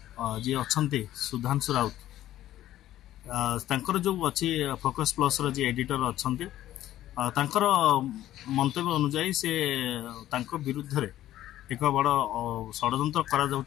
जी अच्छा सुधांशु राउत जो अच्छी फोकस प्लस जी एडिटर अच्छा मंतव्य अनुजाई से विरुद्ध रे एक बड़ षड्यंत्र करा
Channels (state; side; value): quieter; right; 13.4 dB